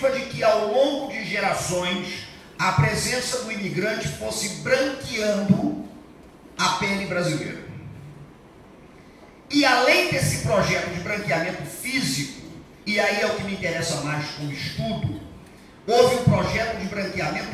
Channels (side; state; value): both; identical; correlation 1.00